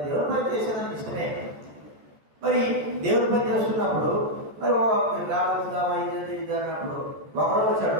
దేవుడు పని చేసేదానికి ఇష్టమే. మరి దేవుడి పని చేస్తున్నప్పుడు మరి రావచ్చుదామా ఇది అన్నప్పుడు ఒకరోజు వచ్చాడు,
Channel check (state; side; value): late; left; 14 ms